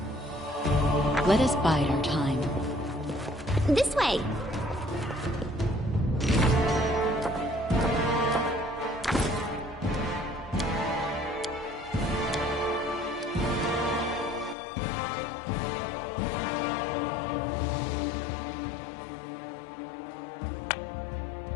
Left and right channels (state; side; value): drops out; right; at 14.6 s